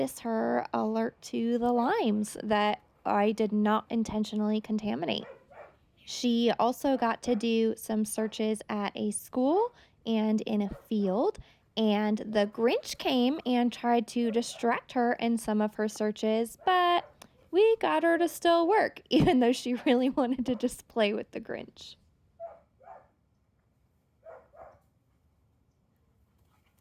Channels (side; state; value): both; identical; correlation 1.00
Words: her alert to the limes that I did not intentionally contaminate. She also got to do some searches at a school and in a field, and the Grinch came and tried to distract her in some of her searches, but we got her to still work, even though she really wanted to just play with the Grinch.